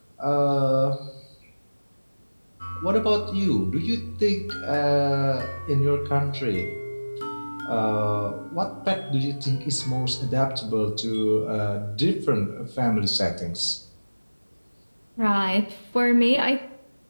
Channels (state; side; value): inverted; both; correlation -1.00